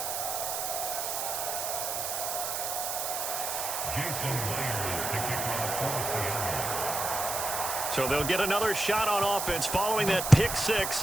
So they'll get another shot on offense following that pick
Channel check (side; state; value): right; noise; hiss, 2 dB below the sound